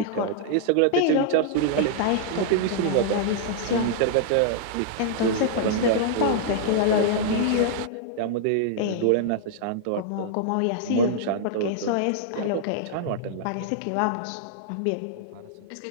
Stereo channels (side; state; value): both; different; correlation -0.01